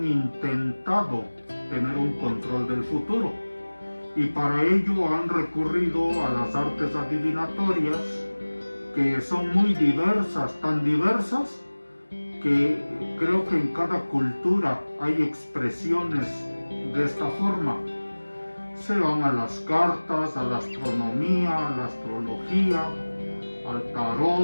intentado tener un control del futuro y para ello han recurrido a las artes adivinatorias, que son muy diversas, tan diversas que creo que en cada cultura hay expresiones de esta forma. Se van a las cartas, a la astronomía, a la astrología, al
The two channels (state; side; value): inverted; both; correlation -1.00